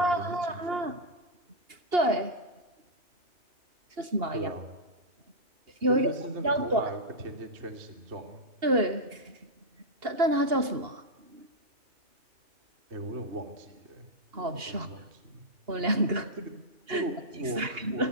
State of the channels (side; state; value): left; late; 2.8 ms